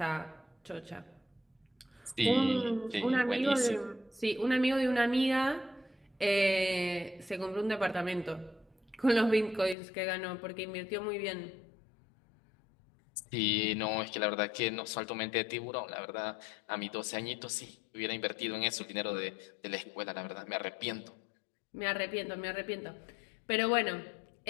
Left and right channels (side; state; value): right; drops out; at 9.8 s